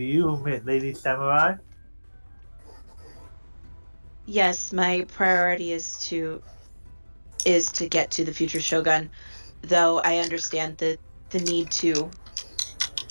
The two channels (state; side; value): inverted; both; correlation -1.00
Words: you, Lady Samurai? Yes, my priority is to is to get to the future shogun, though I understand the need to